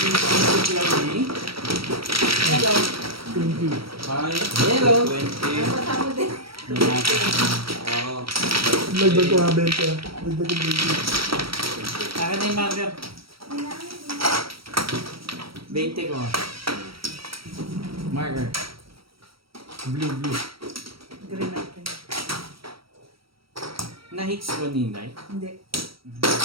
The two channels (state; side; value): late; left; 0.75 ms